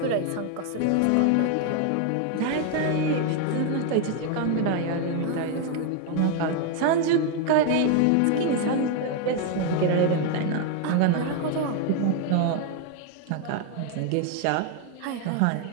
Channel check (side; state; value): both; different; correlation 0.01